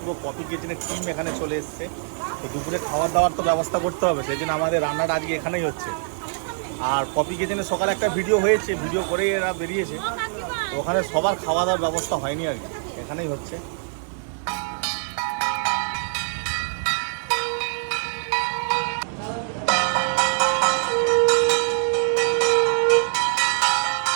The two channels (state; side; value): silent; left; 59 dB below the other